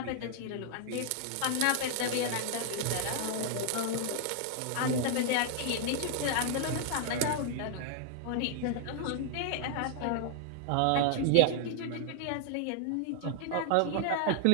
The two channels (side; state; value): both; different; correlation 0.00